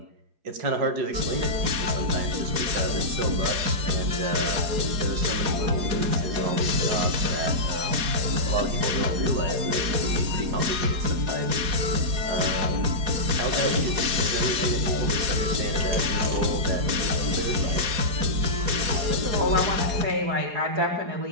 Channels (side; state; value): left; late; 4.8 ms